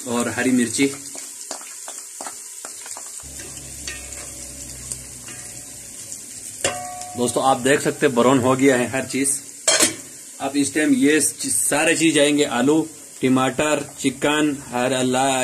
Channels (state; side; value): identical; both; correlation 1.00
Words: और हरी मिर्ची। दोस्तों आप देख सकते ब्राउन हो गया है हर चीज। अब इस टाइम ये सारे चीज आएंगे, आलू, टमाटर, चिकन,